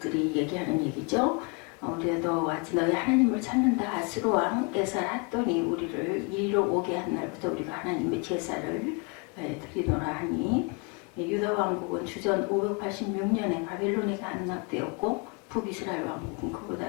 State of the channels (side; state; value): right; quieter; 31.7 dB